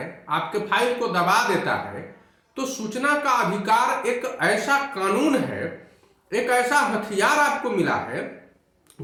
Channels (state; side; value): identical; both; correlation 1.00